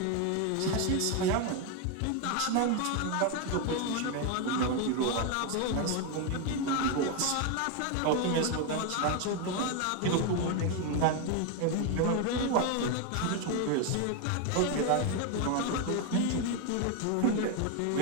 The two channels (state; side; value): different; both; correlation 0.01